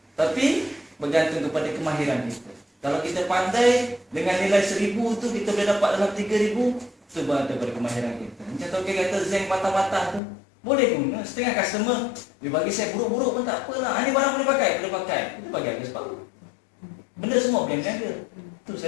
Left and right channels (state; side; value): drops out; right; at 10.2 s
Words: Tapi bergantung kepada kemahiran kita. Kalau kita pandai dengan nilai 1,000 tu kita boleh dapat dalam 3,000, itu bergantung kepada kemahiran kita. Macam token kata zinc patah-patah tu, boleh guna. Setengah customer dia bagi saya buruk-buruk pun tak apalah. Ini barang boleh pakai. Kita bagi harga separuh. Benda semua boleh berniaga. Itu